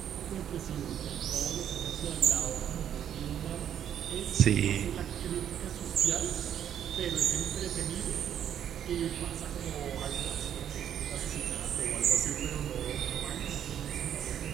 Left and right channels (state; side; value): quieter; left; 9.7 dB